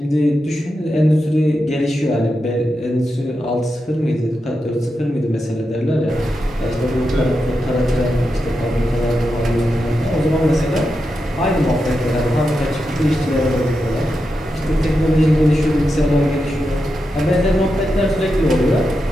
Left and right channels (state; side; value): normal; both; correlation 0.88